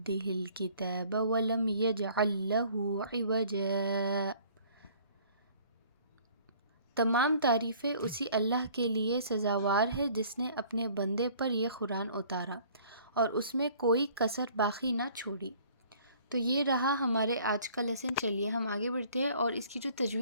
الکتاب ولم یجعل لہ عوجا۔ تمام تعریفیں اسی اللہ کے لیے سزاوار ہے جس نے اپنے بندے پر یہ قرآن اتارا اور اس میں کوئی کسر باقی نہ چھوڑی۔ تو یہ رہا ہمارے آج کا لیسن۔ چلیے ہم آگے بڑھتے ہیں اور اس کی جو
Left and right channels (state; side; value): inverted; both; correlation -0.54